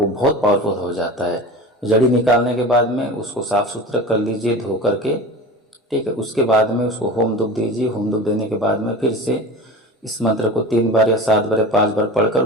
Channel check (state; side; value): normal; both; correlation 0.33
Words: बहुत पावरफुल हो जाता है। जड़ी निकालने के बाद में उसको साफ सुथरा कर लीजिए, धो करके, ठीक है। उसके बाद में उसको होम धूप दीजिए। होम धूप देने के बाद में फिर से इस मंत्र को 3 बार या 7 बार या 5 बार पढ़कर